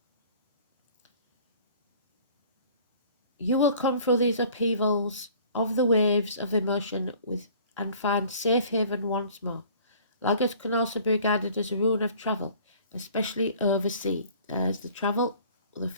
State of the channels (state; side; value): inverted; both; correlation -0.51